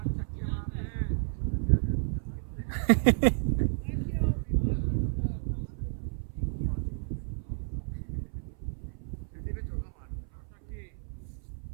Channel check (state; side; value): silent; left; 57 dB below the other